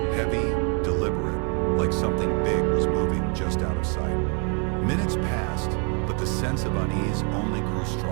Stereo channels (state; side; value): quieter; left; 38.2 dB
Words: heavy, deliberate, like something big was moving just out of sight. Minutes passed, but the sense of unease only grew